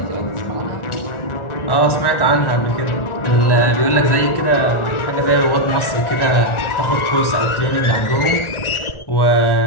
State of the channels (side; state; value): right; late; 1.4 ms